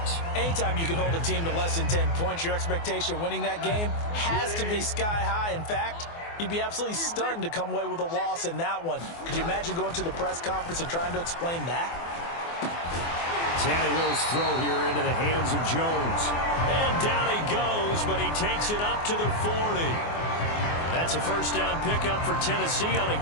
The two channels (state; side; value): late; right; 24 ms